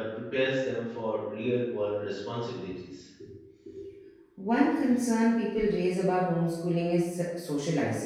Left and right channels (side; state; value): both; identical; correlation 1.00